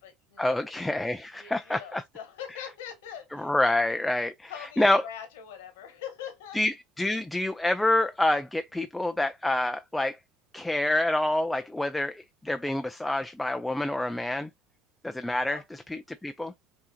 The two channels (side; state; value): both; normal; correlation 0.95